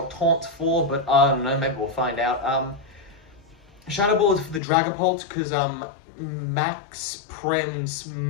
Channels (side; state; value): right; drops out; at 4.6 s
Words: Taunt's for, but I don't know, maybe we'll find out. Shadow Ball is for the Dragapult, because Max Prim's